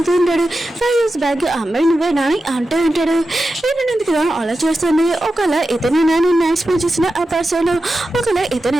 ఉంటాడు 5 years బ్యాక్ అమ్మాయి నువ్వేనా అని అంటూ ఉంటాడు. హీరోని కదా అలా చేస్తుంది. ఒకవేళ ఇతనే నేను ఎక్స్ప్లెయిన్ చేసిన ఆ పర్సన్, ఒకవేళ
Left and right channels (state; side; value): normal; both; correlation 0.92